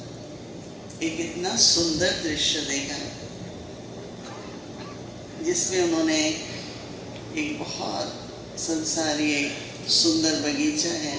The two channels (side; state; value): both; identical; correlation 1.00